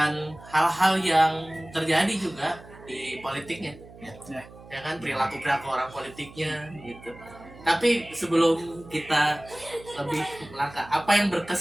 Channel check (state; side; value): noise; right; hum, 19 dB below the sound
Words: hal-hal yang terjadi juga di politiknya. Ya kan, perilaku orang politiknya gitu. Tapi sebelum kita lebih melangkah, apa yang